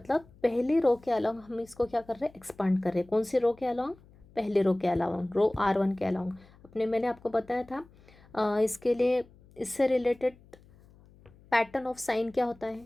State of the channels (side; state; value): left; noise; hum, 26 dB below the sound